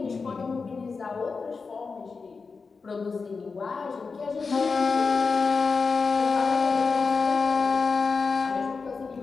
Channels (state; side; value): quieter; right; 4.7 dB